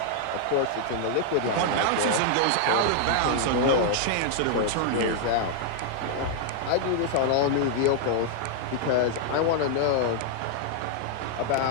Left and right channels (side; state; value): both; different; correlation -0.01